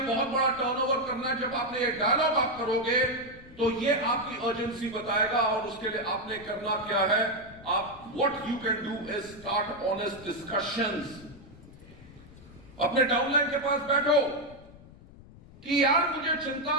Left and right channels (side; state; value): left; noise; rumble, 20 dB below the sound